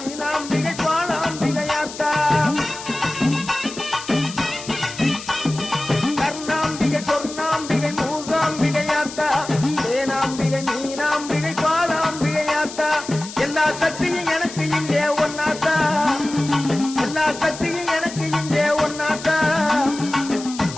பாலாம்பிகையாத்தா கருணாம்பிகை சொர்ணாம்பிகை மூகாம்பிகையாத்தா தேனாம்பிகை மீனாம்பிகை பாலாம்பிகையாத்தா எல்லா சக்தியும் எனக்கு இங்கே ஒன்னாத்தா எல்லா சக்தியும் எனக்கு இங்கே ஒன்னாத்தா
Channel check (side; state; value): left; noise; hiss, 12 dB below the sound